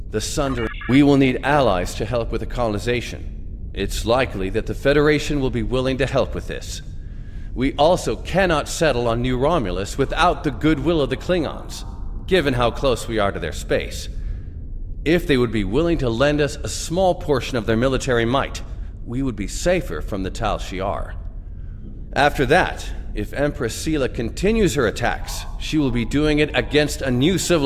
The Sundering... We will need allies to help with the colonization. It's likely that the Federation will be willing to help with this. We also cannot settle on New Romulus without the goodwill of the Klingons, given how close we are to their space. If they would be willing to lend us a small portion of their military might, we would be safer from the Tal Shiar. After that, if Empress Sela continues her attacks, she will be doing it against a new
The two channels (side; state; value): both; identical; correlation 1.00